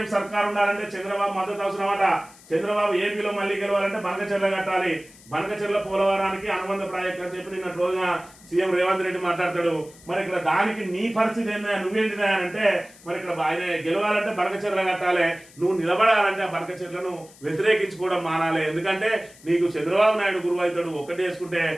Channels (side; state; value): left; noise; hiss, 23 dB below the sound